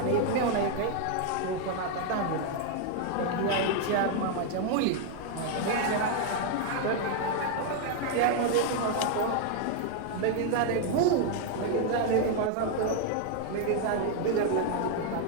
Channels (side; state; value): both; different; correlation 0.00